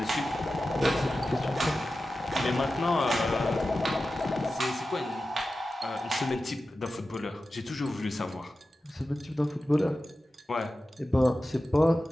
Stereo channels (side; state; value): both; normal; correlation 0.94